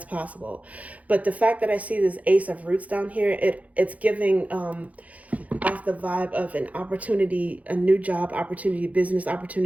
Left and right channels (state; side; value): late; left; 0.070 ms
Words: possible. But the fact that I see this Ace of Roots down here, it's giving off the vibe of an opportunity, a new job opportunity, business